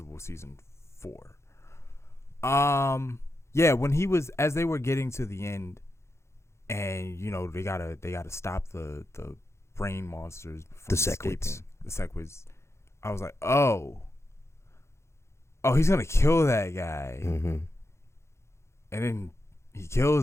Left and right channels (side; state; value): right; late; 0.13 ms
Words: season 4. Yeah, when he was, as they were getting to the end, and they gotta stop the brain monsters from escaping. The Sequids. I was like, oh, he's gonna kill that guy, and then he